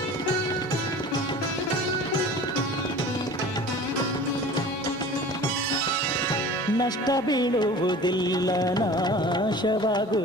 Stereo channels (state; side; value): normal; both; correlation 0.41